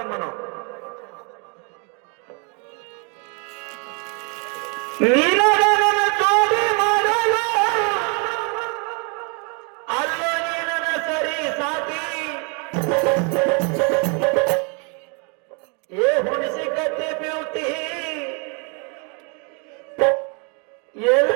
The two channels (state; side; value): quieter; left; 35.2 dB